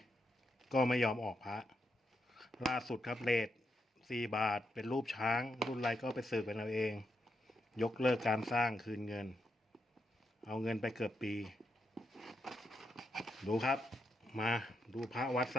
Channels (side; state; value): both; normal; correlation 0.82